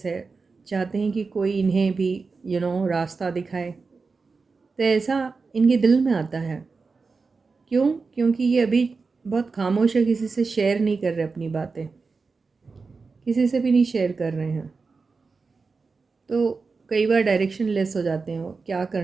है, चाहते हैं कि कोई इन्हें भी रास्ता दिखाए। तो ऐसा इनके दिल में आता है। क्यों? क्योंकि ये अभी बहुत खामोश है, किसी से शेयर नहीं कर रहे अपनी बातें, किसी से भी नहीं शेयर कर रहे हैं। तो कई बार डायरेक्शन लेस हो जाते हैं, वो क्या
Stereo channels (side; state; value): left; quieter; 4.4 dB